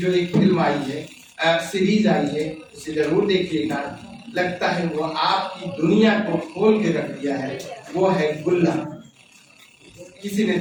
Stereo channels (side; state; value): both; identical; correlation 1.00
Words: एक फिल्म आई है सीरीज आई है, उसे जरूर देखिएगा। लगता है वो आपकी दुनिया को खोल के रख दिया है। वो है गुल्ला। किसी ने